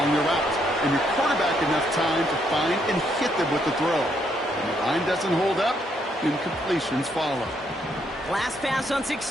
your route, and your quarterback enough time to find and hit them with the throw. When the line doesn't hold up, incompletions follow. Last pass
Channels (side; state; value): both; normal; correlation 0.73